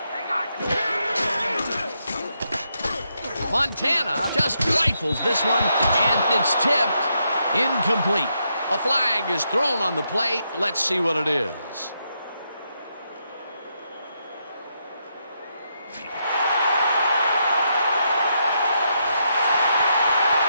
Montana just rifles this one, and it's tipped. Incomplete. A flag is thrown on the play. Let's see what it is.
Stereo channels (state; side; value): inverted; both; correlation -0.80